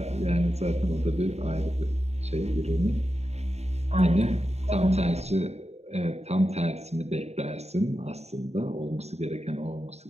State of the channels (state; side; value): late; left; 0.31 ms